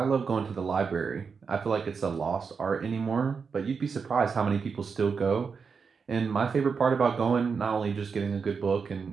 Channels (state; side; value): quieter; left; 5.6 dB